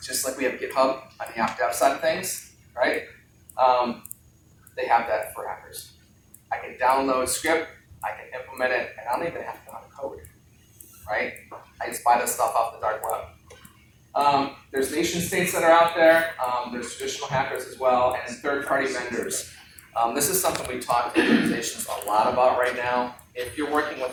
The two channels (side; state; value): both; identical; correlation 1.00